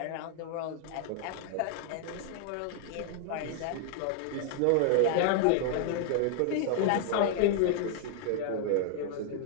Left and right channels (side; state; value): both; different; correlation 0.00